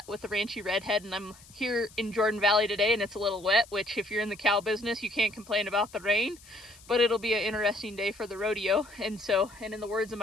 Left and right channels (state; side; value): noise; left; hiss, 23 dB below the sound